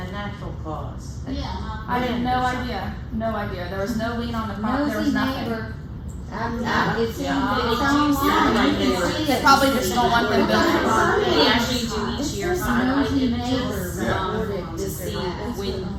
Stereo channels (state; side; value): identical; both; correlation 1.00